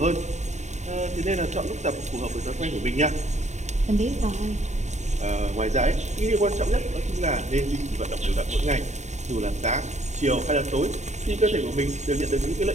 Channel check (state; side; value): late; left; 0.34 ms